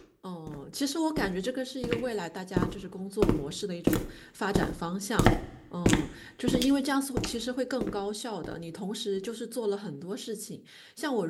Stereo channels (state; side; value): identical; both; correlation 1.00